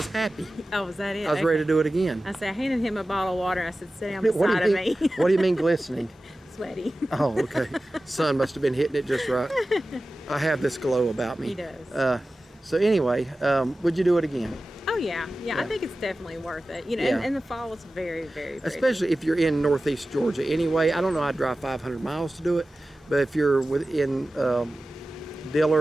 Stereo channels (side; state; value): both; normal; correlation 0.95